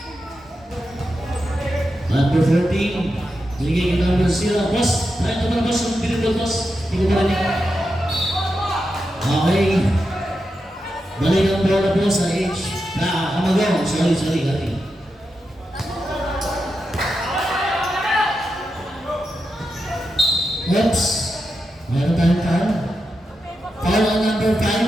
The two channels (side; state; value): both; normal; correlation 0.88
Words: Number 14. Binigay kay number 0. Boss, tayo naman boss. Ang pinipod boss. Hindi ko marinig. Okay. Balik ang bola po sa H. Amagaw. Sorry. Oops. Meron tayong foul. Foul on number 5.